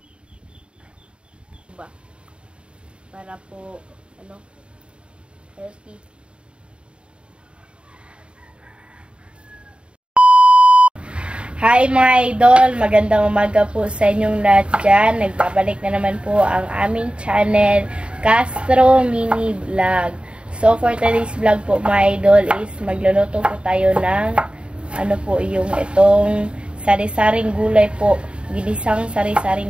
Para po, healthy. Hi mga idol! Magandang umaga po sa inyong lahat dyan. Nagbabalik na naman po ang aming channel, Castro Mini Vlog. So for today's vlog po mga idol is magluluto po tayo ng yung itong sari-saring gulay po. Ginisang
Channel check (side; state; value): left; late; 0.055 ms